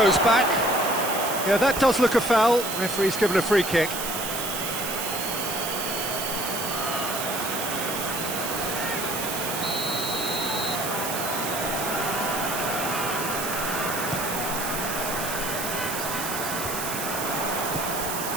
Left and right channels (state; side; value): noise; right; hiss, 4 dB below the sound